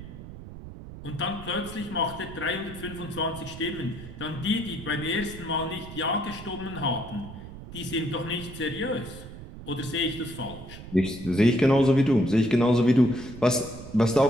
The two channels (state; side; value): noise; right; rumble, 13 dB below the sound